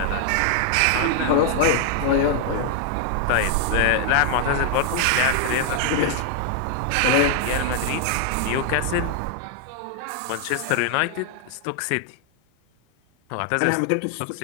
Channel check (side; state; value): both; different; correlation 0.00